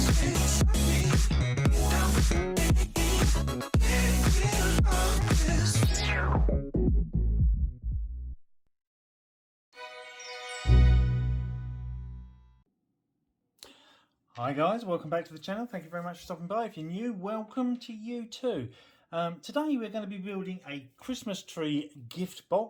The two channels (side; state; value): both; identical; correlation 1.00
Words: guys, welcome back to the channel. Thank you very much for stopping by. If you're new, welcome to you too. Today we're going to be building a Christmas tree gift